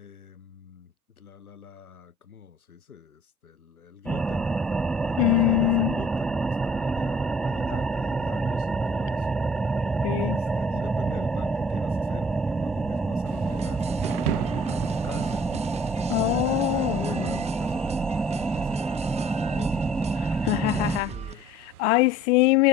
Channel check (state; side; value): normal; both; correlation 0.53